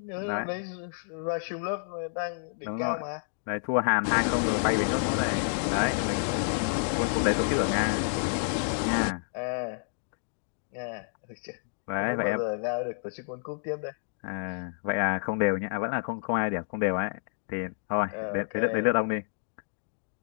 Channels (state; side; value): silent; right; digital silence